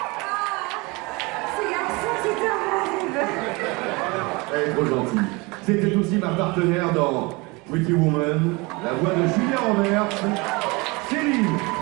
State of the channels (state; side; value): quieter; left; 26.0 dB